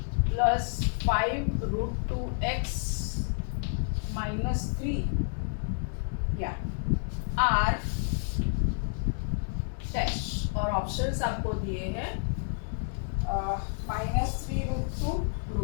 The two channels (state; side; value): silent; right; 58 dB below the other